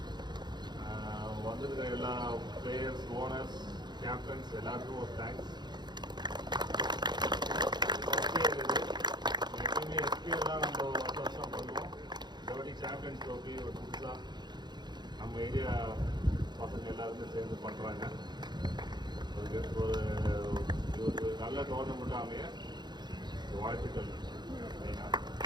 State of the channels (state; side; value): late; left; 0.21 ms